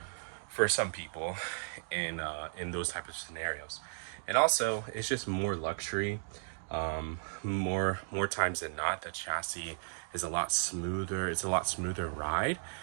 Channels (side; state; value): left; silent; digital silence